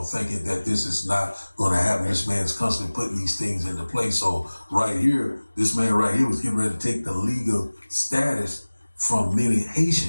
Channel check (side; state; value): both; inverted; correlation -1.00